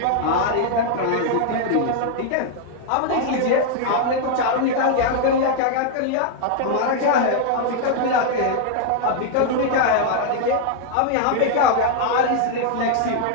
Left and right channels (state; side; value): different; both; correlation -0.01